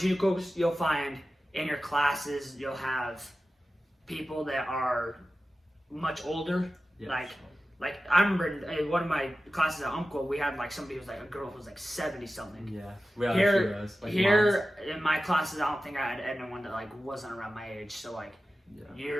you'll find in your classes, you'll have people that are much older. Yeah, like I remember in one of my classes at Umpqua, we had like somebody who was like a girl who was like 70 something. Yeah, we had here in my classes, I don't think I had anyone that like wasn't around my age. So like,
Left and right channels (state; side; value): normal; both; correlation 0.94